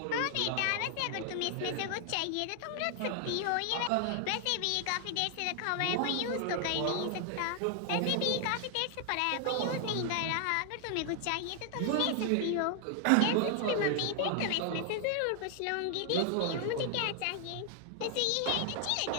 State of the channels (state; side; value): different; both; correlation 0.00